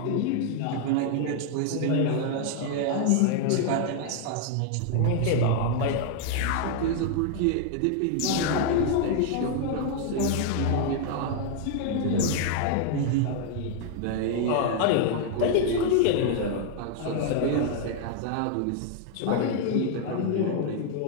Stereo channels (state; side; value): different; both; correlation 0.00